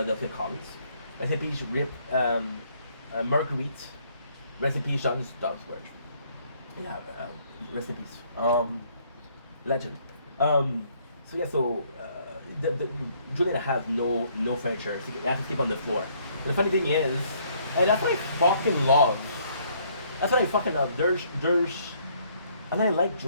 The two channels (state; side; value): inverted; both; correlation -0.65